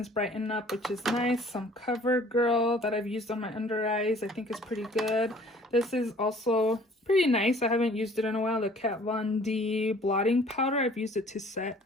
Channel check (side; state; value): both; normal; correlation 0.53